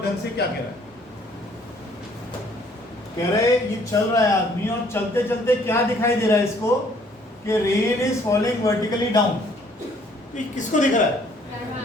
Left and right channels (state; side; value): normal; both; correlation 0.61